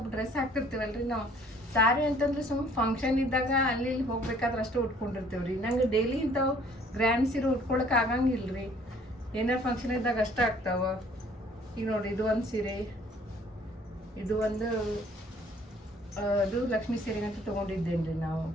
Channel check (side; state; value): both; normal; correlation 0.58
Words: ಡ್ರೆಸ್ ಹಾಕ್ತಿರ್ತೀವಲ್ರಿ ನಾವು. ಸಾರಿ ಅಂತಂದ್ರೆ ಸುಮ್ಮನೆ ಫಂಕ್ಷನ್ ಇದ್ದಾಗ ಅಲ್ಲಿ ಇಲ್ಲಿ ಹೋಗ್ಬೇಕಾದ್ರೆ ಅಷ್ಟು ಉಟ್ಕೊಂಡಿರ್ತೀವ್ರಿ. ನಂಗೆ ಡೈಲಿ ಇಂಥವು ಗ್ರ್ಯಾಂಡ್ ಸೀರೆ ಉಟ್ಕೊಳಕ್ಕೆ ಆಗಂಗಿಲ್ರಿ. ಏನಾರು ಫಂಕ್ಷನ್ ಇದ್ದಾಗ ಅಷ್ಟೇ ಆಗ್ತಾವ. ಈಗ ನೋಡಿ ಇದು ಒಂದು ಸೀರೆ. ಇದು ಒಂದು ಅದು ಲಕ್ಷ್ಮೀ ಸೀರೆ ಅಂತ ತೊಗೊಂಡಿದ್ದೇನ್ರಿ ನಾವು